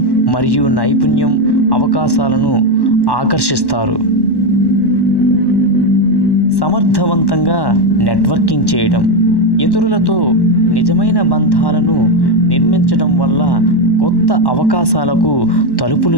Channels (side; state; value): right; late; 1.1 ms